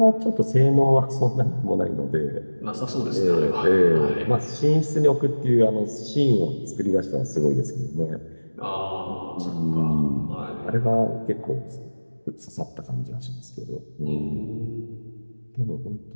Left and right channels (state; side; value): inverted; both; correlation -1.00